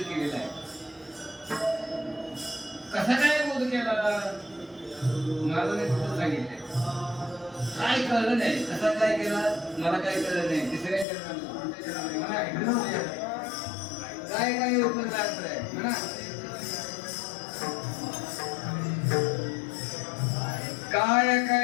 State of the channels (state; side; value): drops out; right; at 11.1 s